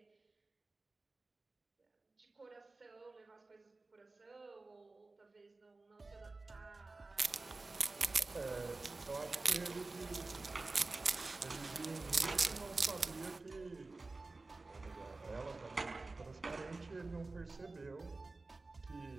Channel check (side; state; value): left; quieter; 3.4 dB